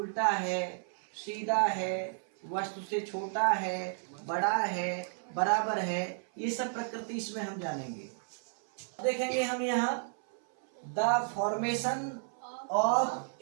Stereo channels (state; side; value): silent; left; 56 dB below the other